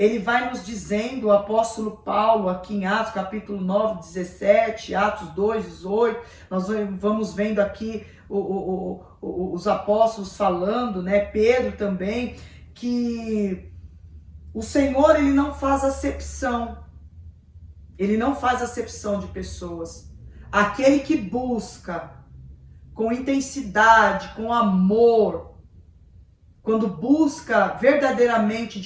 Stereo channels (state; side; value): identical; both; correlation 1.00